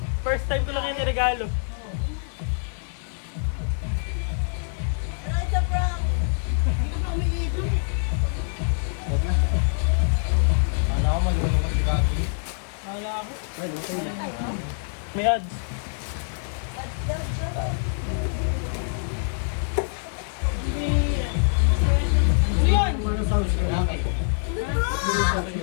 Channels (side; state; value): right; silent; digital silence